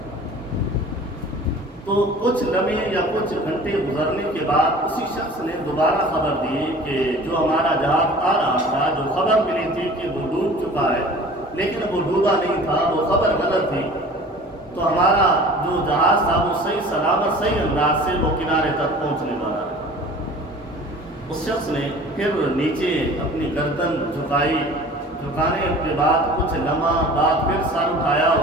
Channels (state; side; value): normal; both; correlation 0.44